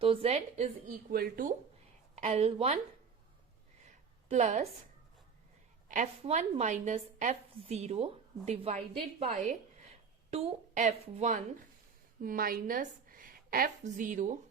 तो Z is equal to L1 plus F1 minus F0 divided by 2F1 minus F0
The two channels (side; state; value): left; quieter; 5.9 dB